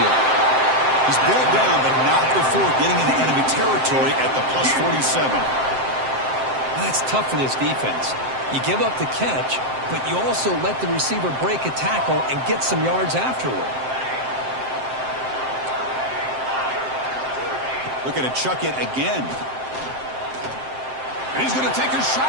He's brought down, but not before getting into enemy territory at the plus 47. Well, that's tough for this defense. You give up the catch, but you also let the receiver break a tackle and get some yards afterward. Looking to chuck it again. And he's going to take a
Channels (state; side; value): late; left; 7.7 ms